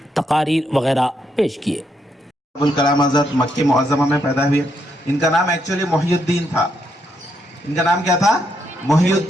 تقاریر وغیرہ پیش کیے۔ ابوالکلام آزاد مکہ معظمہ میں پیدا ہوئے۔ ان کا نام ایکچولی محی الدین تھا۔ ان کا نام کیا تھا؟ محی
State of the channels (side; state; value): both; normal; correlation 0.78